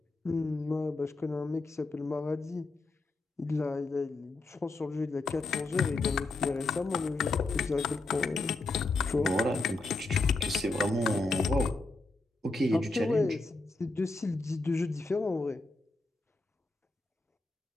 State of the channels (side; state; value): right; quieter; 3.2 dB